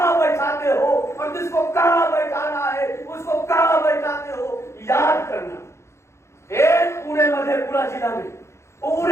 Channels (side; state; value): right; late; 0.13 ms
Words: बैठाते हो, और जिसको कहां बैठाना है उसको कहां बैठाते हो। याद करना, एक पूरे मधेपुरा जिला में,